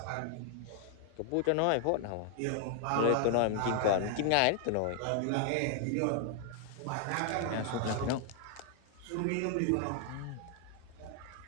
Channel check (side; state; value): both; different; correlation 0.00